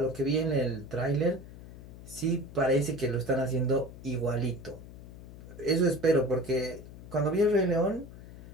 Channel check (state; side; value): noise; left; hum, 15 dB below the sound